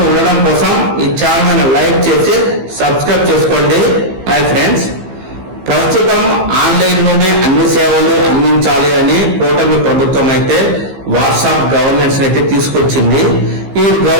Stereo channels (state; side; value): late; left; 15 ms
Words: ఉండడం కోసం ఈ ఛానల్ లైక్ చేసి సబ్స్క్రైబ్ చేసుకోండి. హాయ్ ఫ్రెండ్స్, ప్రస్తుతం ఆన్లైన్ లోనే అన్ని సేవలు అందించాలి అని కూటమి ప్రభుత్వం అయితే వాట్సాప్ గవర్నెన్స్ అయితే తీసుకొచ్చింది. ఈ